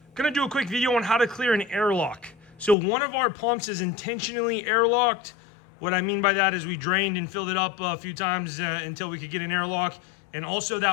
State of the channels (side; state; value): right; drops out; at 2.8 s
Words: do a quick video on how to clear an airlock. So one of our pumps is intentionally airlocked. What I mean by that is we drained and filled it up a few times until we could get an airlock. And also